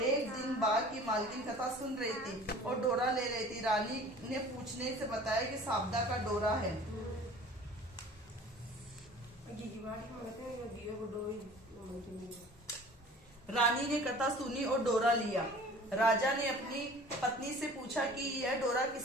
एक दिन बाग की मालकिन कथा सुन रही थी और डोरा ले रही थी। रानी ने पूछने से बताया कि साबदा का डोरा है। रानी ने कथा सुनी और डोरा लिया। राजा ने अपनी पत्नी से पूछा कि यह डोरा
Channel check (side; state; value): both; normal; correlation 0.45